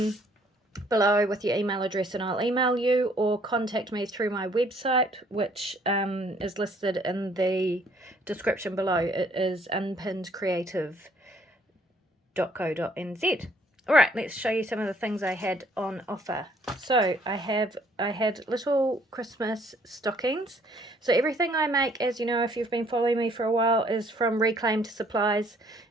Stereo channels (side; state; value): both; normal; correlation 0.63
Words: below with your email address and I'll email you, or contact me through my website, which is listed in the description below. It is unpinnedcreative.co.nz. Alright, let's show you some of the things I had on offer. So I had little Christmas stockings. So everything I make, as you know if you've been following me for a while, is from reclaimed supplies,